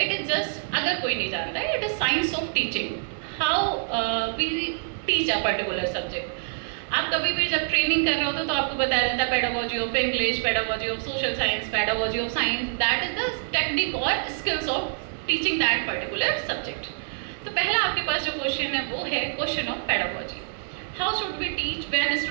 is just, अगर कोई नहीं जानता है, it is science of teaching, how we teach a particular subject. आप कभी भी जब ट्रेनिंग कर रहे होते तो आपको बताया जाता है pedagogy of English, pedagogy of social science, pedagogy of science, that is the technique और skills of teaching that particular subject. तो पहला आपके पास जो क्वेश्चन है वो है question of pedagogy. How should we teach when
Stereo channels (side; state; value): left; silent; 61 dB below the other